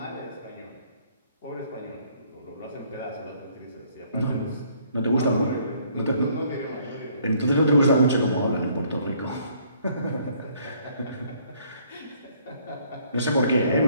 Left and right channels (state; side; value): inverted; both; correlation -0.63